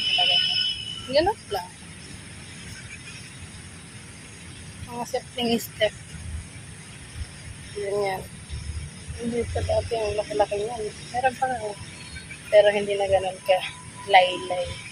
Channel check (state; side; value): identical; both; correlation 1.00